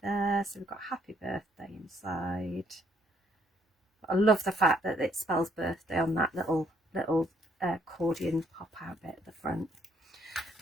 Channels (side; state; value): both; normal; correlation 0.68